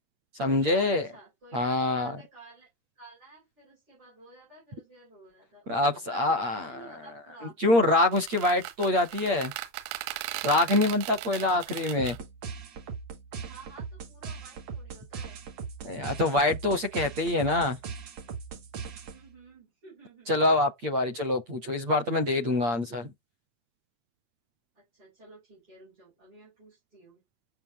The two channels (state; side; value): late; left; 8.6 ms